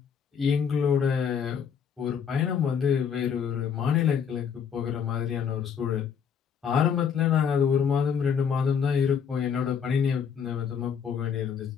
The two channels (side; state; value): right; quieter; 7.2 dB